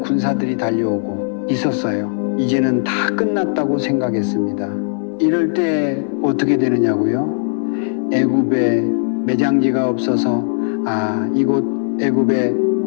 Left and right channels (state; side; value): silent; right; digital silence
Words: 군사들이 달려오고 있었어요. 이제는 다 끝났다고 생각했습니다. 이럴 때 어떻게 되느냐고요? 애굽에 매장지가 없어서 이곳 애굽에